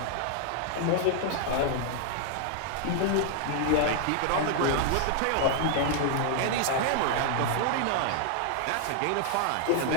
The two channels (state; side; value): different; both; correlation 0.00